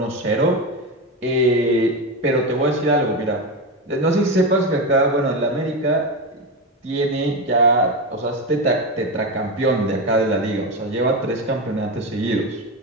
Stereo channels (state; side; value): normal; both; correlation 0.16